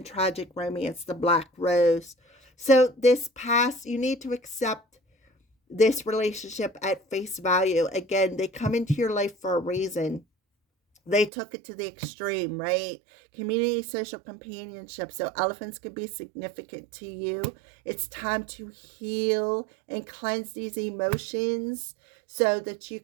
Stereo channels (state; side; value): drops out; left; at 11.3 s